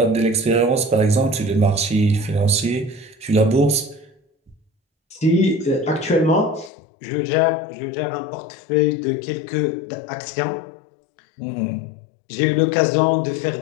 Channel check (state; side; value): drops out; right; at 6.7 s